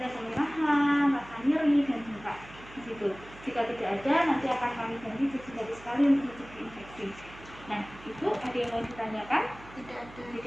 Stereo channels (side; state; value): right; noise; hum, 19 dB below the sound